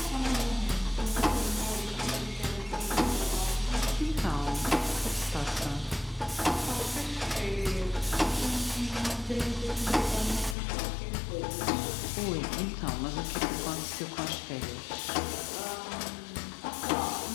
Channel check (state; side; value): drops out; right; at 10.6 s